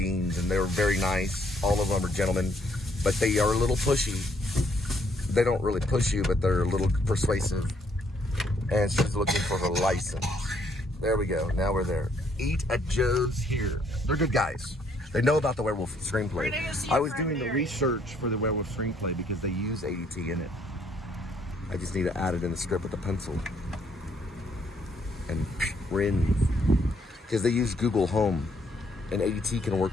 and they were very nice. All of them are gentlemen, but they are a little pushy. They don't really push you, but they're a little persuasive. And she's looking for her license. There we go. Now we're there. Eat at Joe's here. They're good guys. They know about the werewolf screenplay. I was doing the research for the werewolf screenplay because they use ADT in it. I just need to add it in the script with a pencil. And rin. Because they use Google Home. And ADT can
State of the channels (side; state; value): both; normal; correlation 0.68